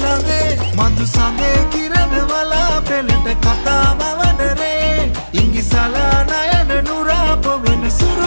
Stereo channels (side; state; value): both; inverted; correlation -1.00